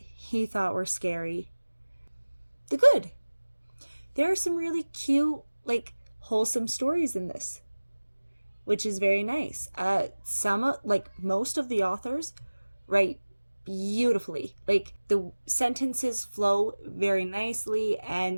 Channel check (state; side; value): inverted; both; correlation -1.00